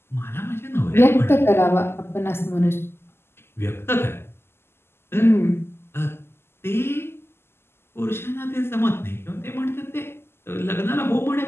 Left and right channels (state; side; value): late; right; 0.12 ms